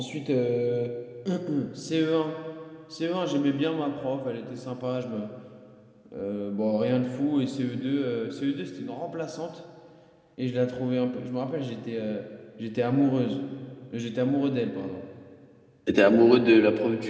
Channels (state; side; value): identical; both; correlation 1.00